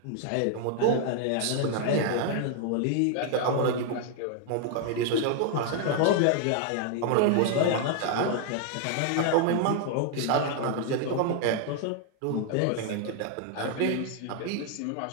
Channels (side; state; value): both; different; correlation 0.00